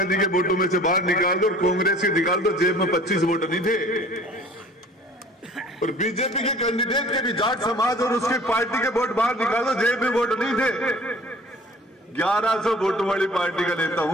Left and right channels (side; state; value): both; normal; correlation 0.48